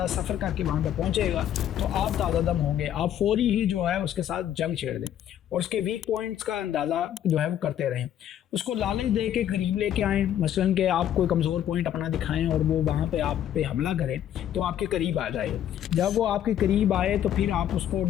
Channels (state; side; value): quieter; right; 10.7 dB